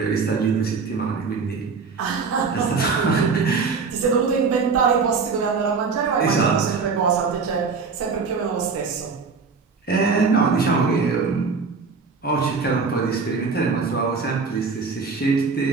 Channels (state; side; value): quieter; left; 4.9 dB